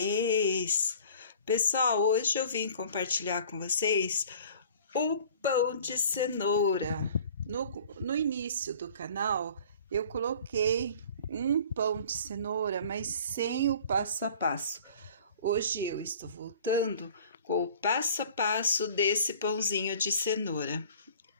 Pessoal, hoje eu vim compartilhar com vocês o pão de cenoura. No início do canal, eu coloquei um pão de cenoura, mas sem o passo a passo. Hoje eu estou voltando com o passo a passo desse pãozinho de cenoura.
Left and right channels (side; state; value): both; inverted; correlation -0.48